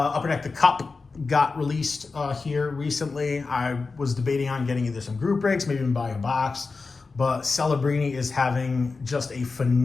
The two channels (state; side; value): quieter; right; 4.2 dB